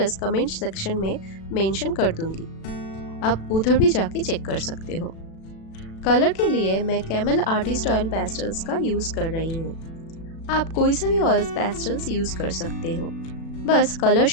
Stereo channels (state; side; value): late; right; 36 ms